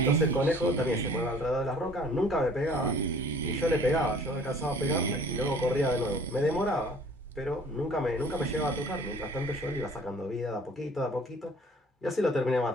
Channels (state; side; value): normal; both; correlation 0.51